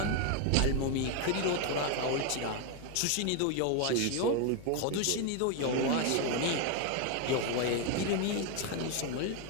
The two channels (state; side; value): different; both; correlation 0.01